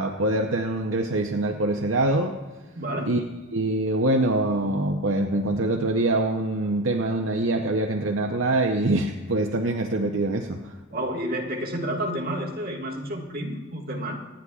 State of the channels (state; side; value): normal; both; correlation 0.20